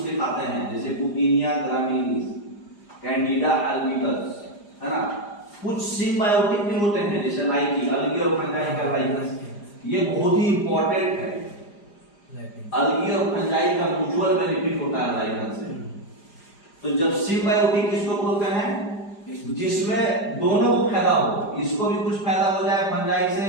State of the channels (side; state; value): right; late; 4.9 ms